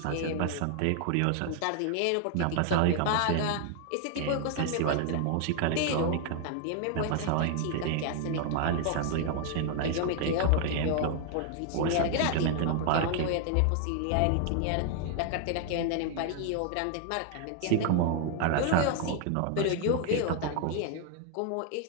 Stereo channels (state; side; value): different; both; correlation 0.00